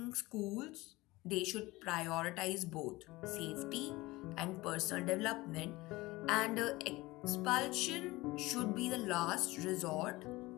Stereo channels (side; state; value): right; quieter; 20.5 dB